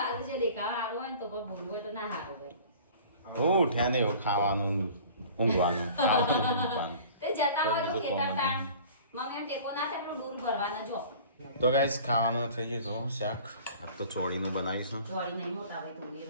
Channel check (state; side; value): inverted; both; correlation -0.45